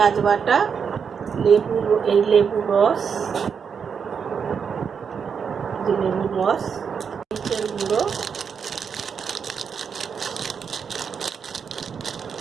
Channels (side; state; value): left; quieter; 6.6 dB